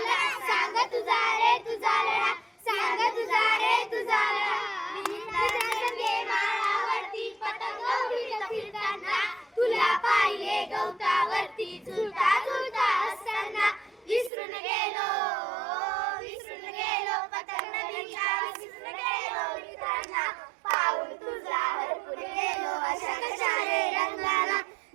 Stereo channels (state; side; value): drops out; left; at 14.3 s